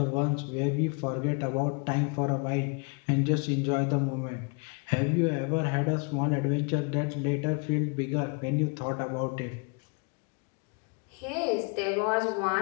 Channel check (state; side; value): quieter; right; 33.2 dB